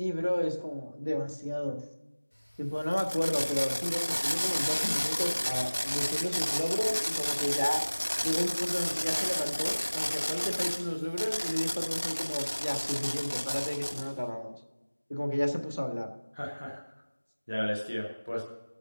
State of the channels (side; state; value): both; inverted; correlation -1.00